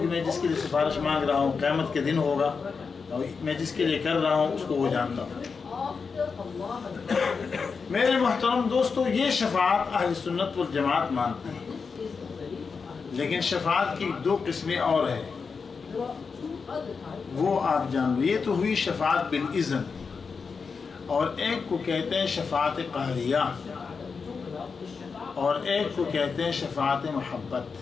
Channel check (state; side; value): quieter; right; 5.2 dB